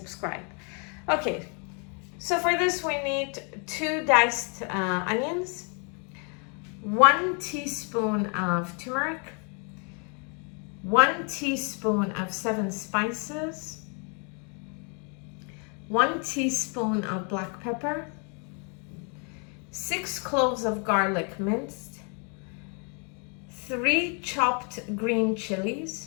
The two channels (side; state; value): right; quieter; 37.5 dB